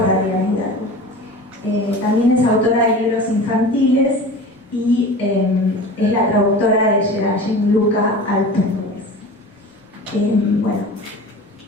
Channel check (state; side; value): normal; both; correlation 0.35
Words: Adriana Hidalgo. También es autora de libros infantiles y es la traductora de Geraldine Luca al portugués.